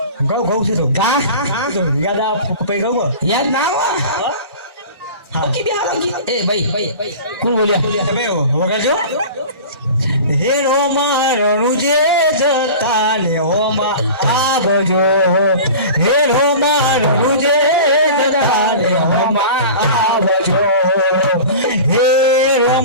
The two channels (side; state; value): both; inverted; correlation -0.37